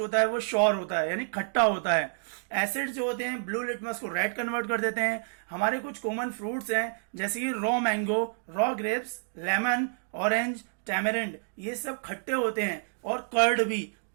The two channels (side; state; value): left; silent; digital silence